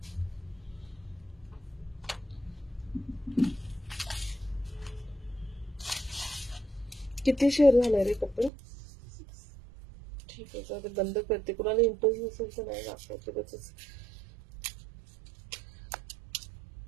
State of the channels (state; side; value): drops out; left; at 8.5 s